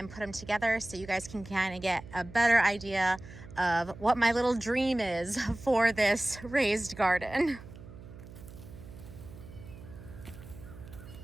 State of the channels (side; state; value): right; noise; hum, 16 dB below the sound